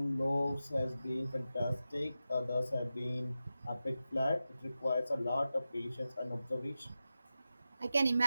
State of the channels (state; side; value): inverted; both; correlation -0.93